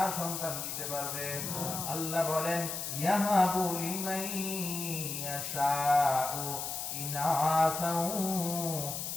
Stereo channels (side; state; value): left; noise; hiss, 4 dB below the sound